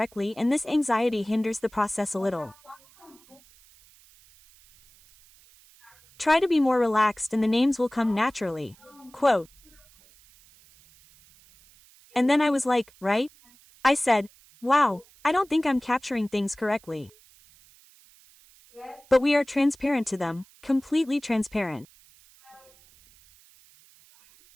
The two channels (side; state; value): right; noise; hiss, 28 dB below the sound